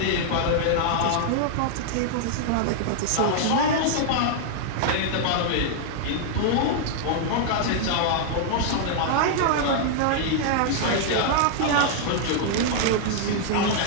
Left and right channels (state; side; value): different; both; correlation -0.01